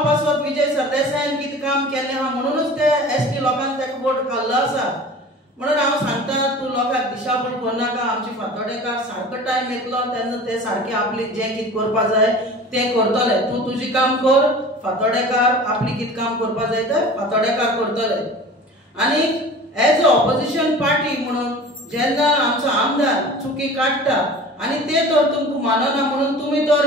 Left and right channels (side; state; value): both; normal; correlation 0.40